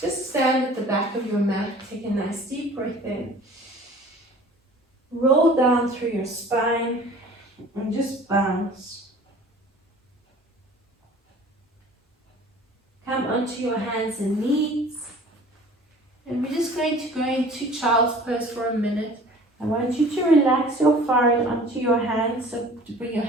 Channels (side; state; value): both; normal; correlation 0.47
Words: stand at the back of your mat. Take a nice deep breath in. Roll down through your spine and just bounce. Come onto your hands and knees. And we're just going to go into child's pose for a minute. I want you to relax your forehead onto your hands, so to bring your